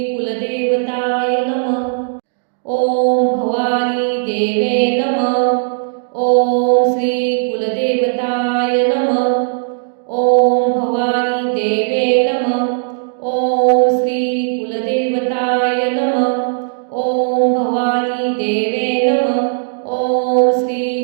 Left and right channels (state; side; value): silent; left; digital silence